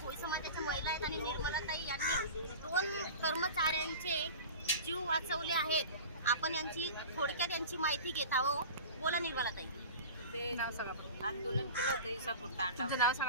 भोई समाजाच्या महिला आहेत आणि निर्मलाताई यांनी 2 कर्मचाऱ्यांचे जीव वाचवले आहेत. आपण यांची थोडक्यात यांची माहिती घेत आहोत. बोला निर्मलाताई. ते नाव सांगा. आंदोलन केलं होतं इसापूर तांडा. तुमचं नाव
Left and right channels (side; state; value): both; inverted; correlation -0.34